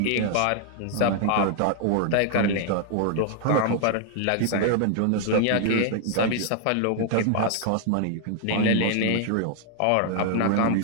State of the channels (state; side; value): different; both; correlation 0.00